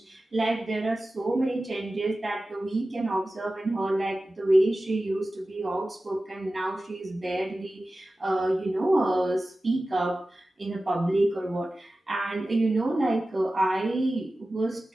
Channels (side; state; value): both; normal; correlation 0.95